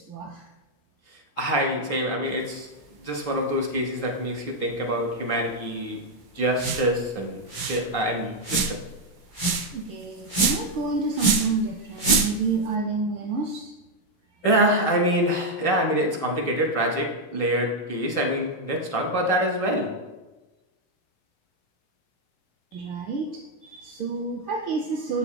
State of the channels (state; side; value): late; right; 16 ms